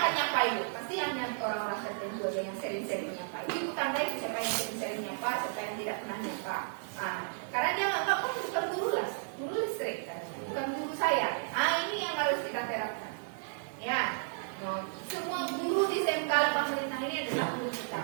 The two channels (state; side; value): silent; left; digital silence